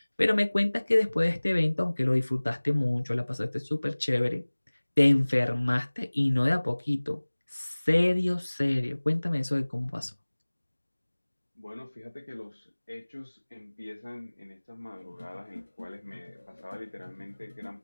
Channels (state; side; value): inverted; both; correlation -1.00